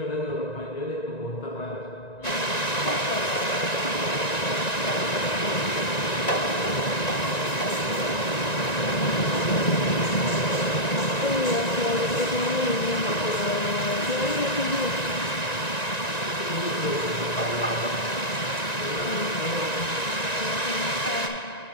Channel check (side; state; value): right; late; 1.9 ms